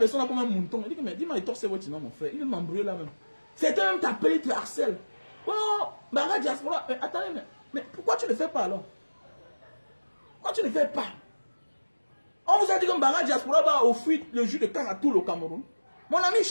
là comme un mouton. Il dit que, mais dis-moi, il torse votre nom, mon frère. Il veut m'embrouiller là même. C'était même t'appeler, il te harcèle. Oh, Mbanga Diaspora, attendez, mais pourquoi tu ne le fais pas alors? Pourquoi tu ne le fais pas? On vous a dit que Mbanga Diaspora va offrir le jus de canne à tout le Cameroun. Mon ami,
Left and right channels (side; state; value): both; inverted; correlation -1.00